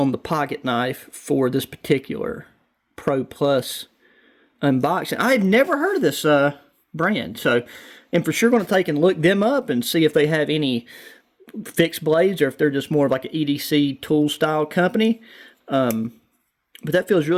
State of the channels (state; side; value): identical; both; correlation 1.00